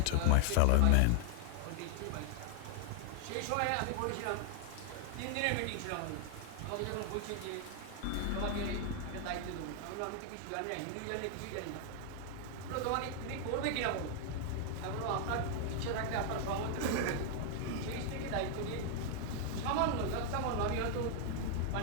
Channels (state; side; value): different; both; correlation 0.00